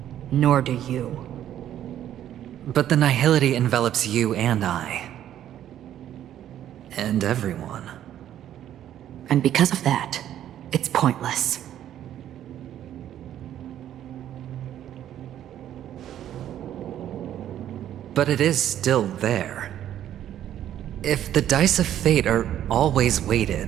Nor do you. But the nihility envelops you and I. And everyone. And because of that, it's pointless. But it is still there. If the dice of fate are always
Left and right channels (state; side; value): quieter; left; 11.3 dB